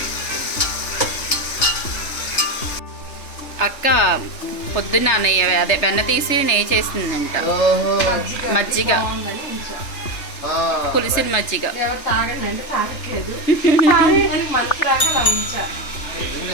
అక్క పొద్దున్న నెయ్యి అదే వెన్న తీసి నెయ్యి చేసిందంట. మజ్జిగ, పులిసిన మజ్జిగ. ఎవరు తాగండి అంటే తాగట్లేదు. మనసు రాగా అలా ఉంచా.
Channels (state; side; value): late; right; 3.3 ms